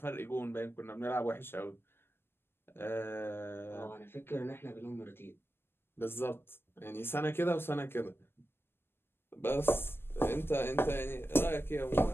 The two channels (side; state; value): right; late; 0.11 ms